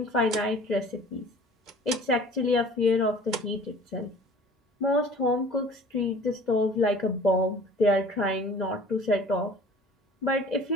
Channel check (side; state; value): both; normal; correlation 0.48